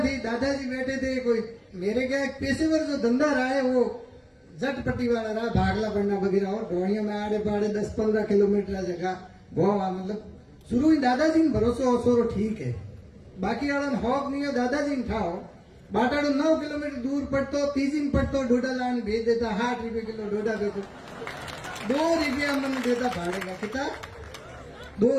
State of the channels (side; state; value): both; identical; correlation 1.00